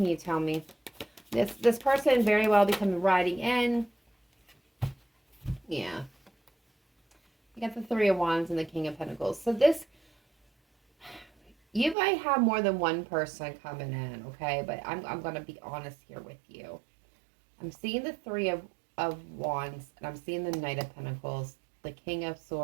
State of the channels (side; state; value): left; drops out; at 12.0 s